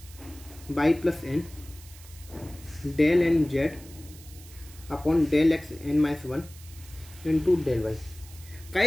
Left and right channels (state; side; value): noise; right; hiss, 20 dB below the sound